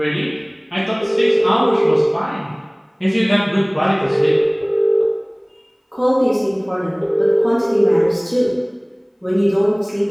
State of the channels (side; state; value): both; identical; correlation 1.00